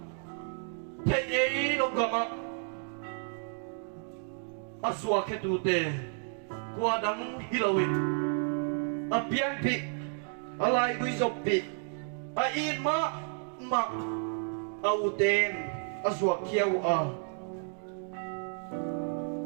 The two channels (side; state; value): left; silent; 56 dB below the other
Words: thei eri lo gama aswa ke tu te kwa dang hilawin apian pi alai gui zopi a in ma auten aswa kiau a